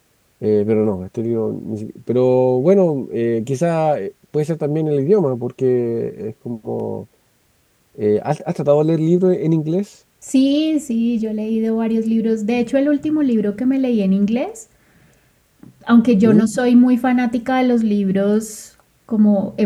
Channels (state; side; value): identical; both; correlation 1.00